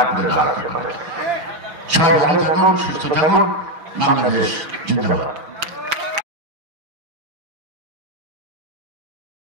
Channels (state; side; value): late; left; 5.9 ms